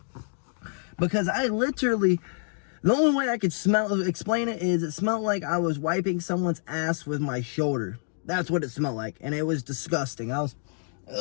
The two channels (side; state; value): right; silent; digital silence